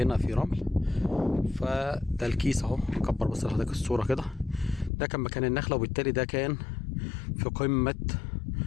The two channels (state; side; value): drops out; right; at 4.9 s